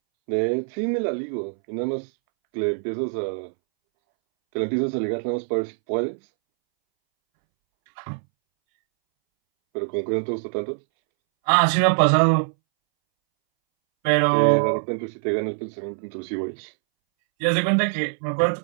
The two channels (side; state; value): left; silent; 63 dB below the other